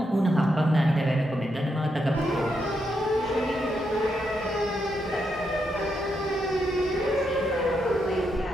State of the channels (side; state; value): both; normal; correlation 0.81